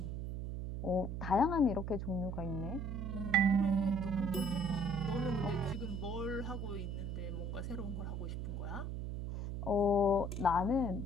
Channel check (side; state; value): right; noise; hum, 4 dB below the sound